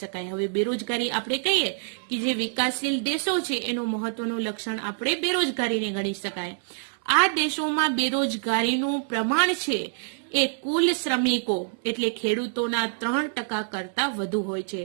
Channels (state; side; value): silent; left; digital silence